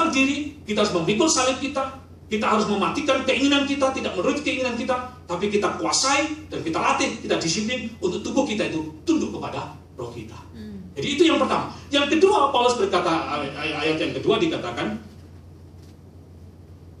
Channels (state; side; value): identical; both; correlation 1.00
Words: diri, kita harus memikul salib kita harus mematikan keinginan kita, tidak menuruti keinginan kita, tapi kita kuasai dan kita latih, kita disiplin untuk tubuh kita itu tunduk kepada roh kita. Jadi itu yang pertama. Yang kedua, Paulus berkata, ayat yang kedua dikatakan,